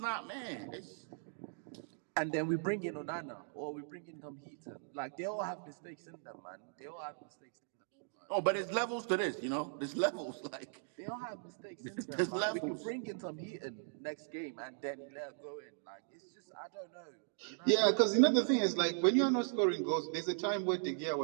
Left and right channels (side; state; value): left; silent; digital silence